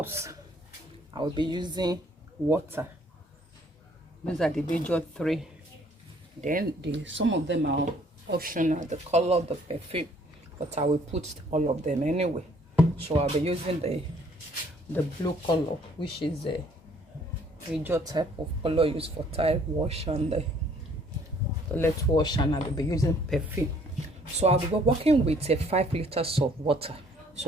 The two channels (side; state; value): both; normal; correlation 0.61